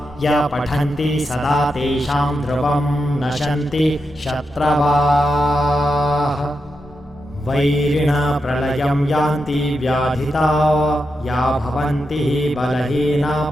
य पठन्ति सदा तेषां ध्रुवं नशन्ति शत्रवाः वैरिणा प्रलयं यान्ति व्याधिता या भवन्ति बलहीना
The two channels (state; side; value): normal; both; correlation 0.87